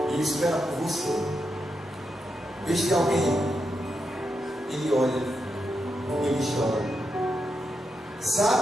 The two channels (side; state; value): both; normal; correlation 0.85